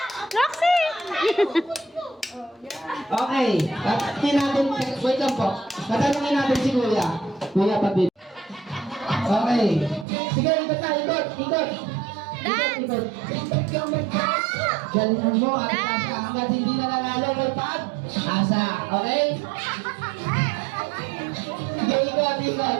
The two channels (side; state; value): left; drops out; at 10.1 s